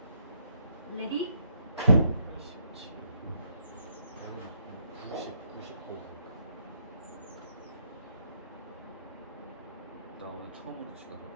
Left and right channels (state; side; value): inverted; both; correlation -0.75